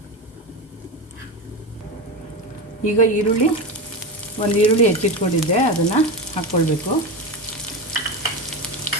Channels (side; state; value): both; normal; correlation 0.20